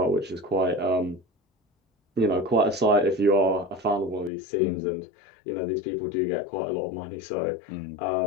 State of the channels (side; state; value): right; drops out; at 4.3 s